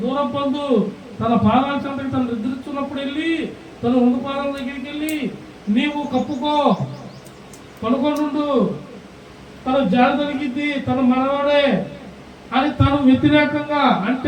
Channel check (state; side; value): identical; both; correlation 1.00